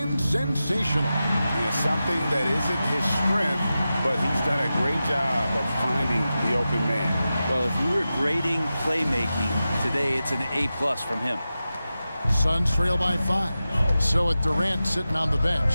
sensational. Yeah, something that isn't his strength, but he's done a great job of finding the open man. Well, if you were grading playmaking today, it's an A+ from him. Suns trail by 5. So with Durant sitting on the bench,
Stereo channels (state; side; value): inverted; both; correlation -0.93